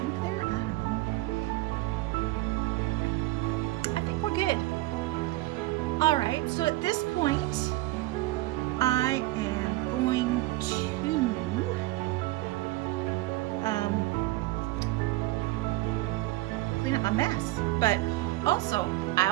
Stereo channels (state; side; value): quieter; left; 18.5 dB